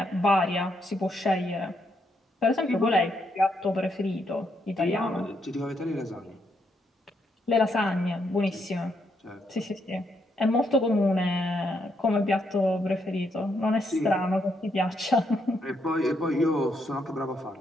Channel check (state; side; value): normal; both; correlation 0.77